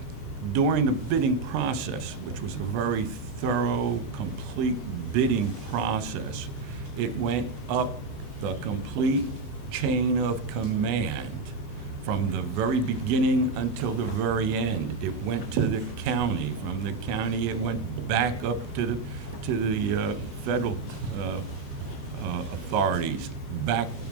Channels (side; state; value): left; quieter; 4.4 dB